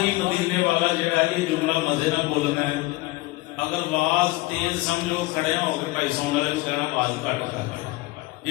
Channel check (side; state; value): right; quieter; 20.6 dB